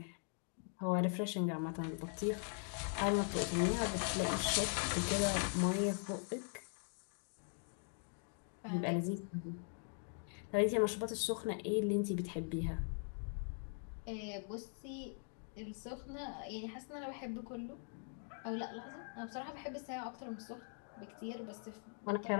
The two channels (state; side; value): silent; right; 50 dB below the other